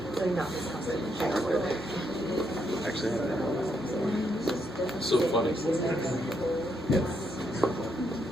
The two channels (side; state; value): both; normal; correlation 0.77